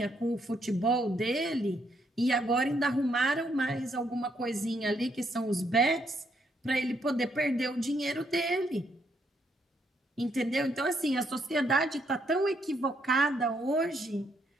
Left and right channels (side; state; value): both; normal; correlation 0.74